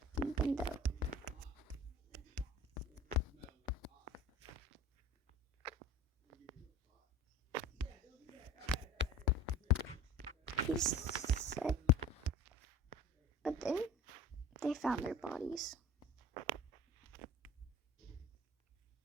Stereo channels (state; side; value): normal; both; correlation 0.40